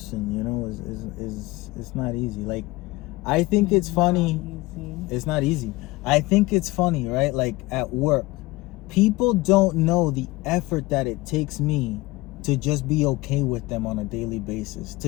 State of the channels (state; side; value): quieter; right; 20.7 dB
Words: you know, is it's not easy. Like, I think it's funny. It's not easy. I think it's funny, right? Like, at work, people don't know the effort that it takes me to just be okay with them on a daily basis.